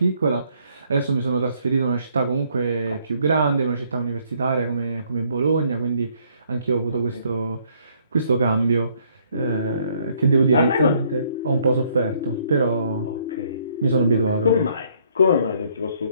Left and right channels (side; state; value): both; inverted; correlation -0.67